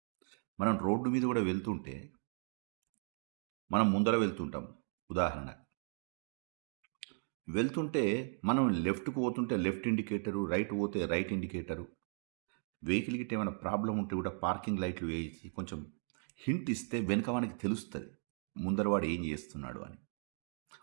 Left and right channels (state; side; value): silent; left; 53 dB below the other